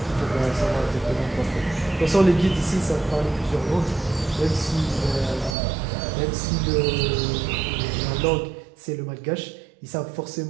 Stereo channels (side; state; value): left; drops out; at 5.6 s